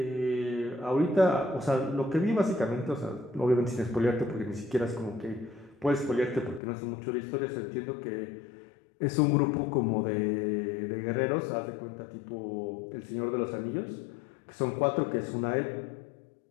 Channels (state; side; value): drops out; right; at 6.6 s